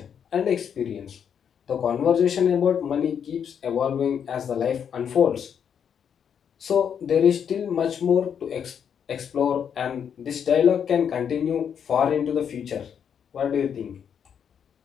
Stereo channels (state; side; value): quieter; right; 7.9 dB